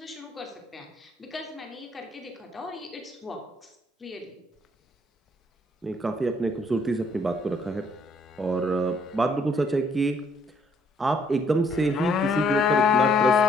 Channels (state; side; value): normal; both; correlation 0.66